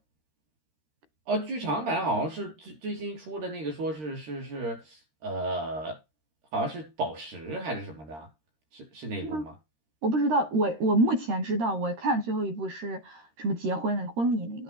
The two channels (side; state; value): left; late; 13 ms